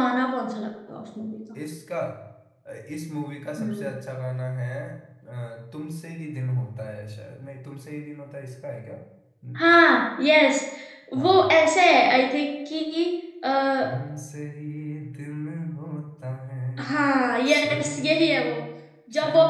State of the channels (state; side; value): identical; both; correlation 1.00